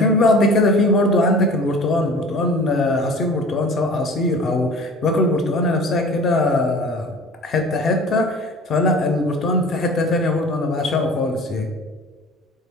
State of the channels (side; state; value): both; normal; correlation 0.43